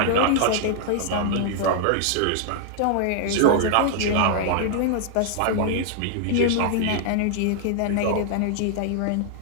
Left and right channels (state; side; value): different; both; correlation 0.00